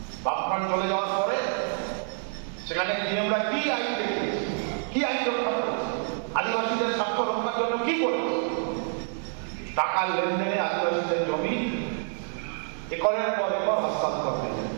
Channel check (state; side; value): silent; left; 60 dB below the other